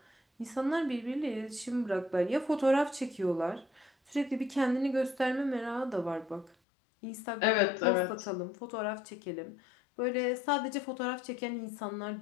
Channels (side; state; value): right; drops out; at 6.6 s